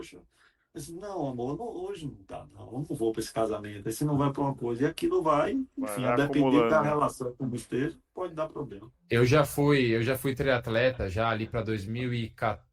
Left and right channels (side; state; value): both; identical; correlation 1.00